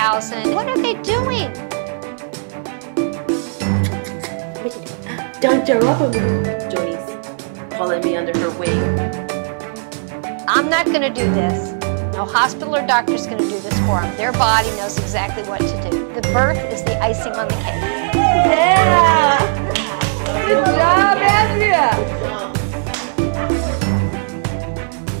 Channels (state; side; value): silent; left; digital silence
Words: What are they doing? Dr. Robert. Joni's calling me under her wing. I'm not going to do this. No hospital or doctor's going to do this for them. Their body knows exactly what to do. The birth is the icing on the cake. Yeah! Good job, Andrea!